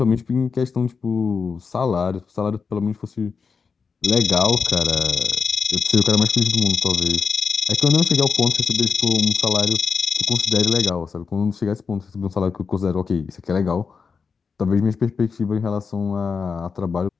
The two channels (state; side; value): quieter; right; 5.4 dB